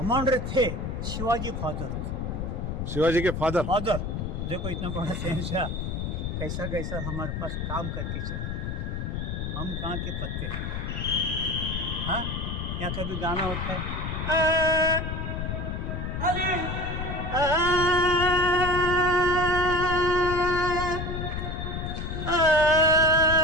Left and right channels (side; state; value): left; noise; rumble, 4 dB below the sound